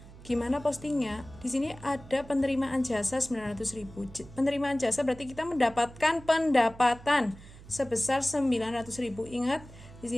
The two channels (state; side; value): noise; right; hum, 18 dB below the sound